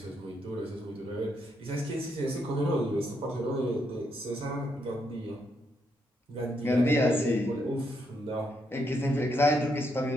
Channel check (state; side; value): normal; both; correlation 0.78